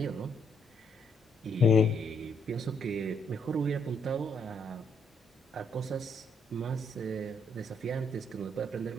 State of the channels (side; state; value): both; normal; correlation 0.72